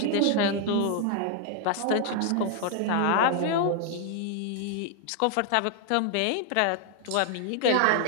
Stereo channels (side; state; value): both; different; correlation 0.00